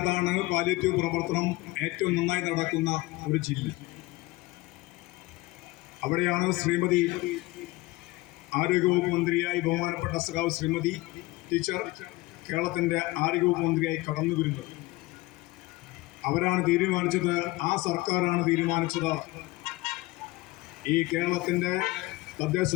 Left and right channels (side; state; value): right; quieter; 20.5 dB